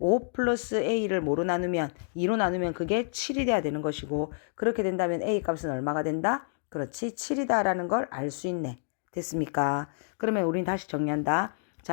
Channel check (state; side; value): silent; right; digital silence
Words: 플러스 A를 뭐로 나누면 2로 나누면 그게 7이 돼야 되는 것이고 그렇게 된다면 A 값은 얼마가 된다? 그렇지 7이다 라는 걸 알 수 있네. 됐습니까? 그러면 우린 다시 정리한다.